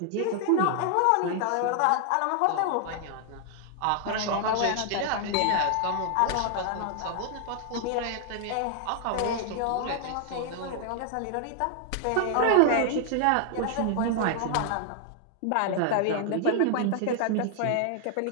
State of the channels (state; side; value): different; both; correlation 0.00